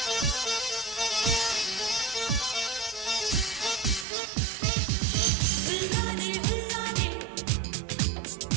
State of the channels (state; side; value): drops out; left; at 4.0 s